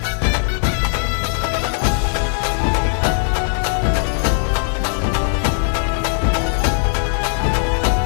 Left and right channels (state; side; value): silent; right; digital silence